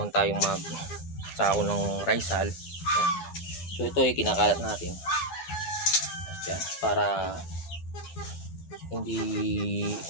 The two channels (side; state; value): right; late; 12 ms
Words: tayong mag sako ng rice hull. So ito ay kinakalat natin para hindi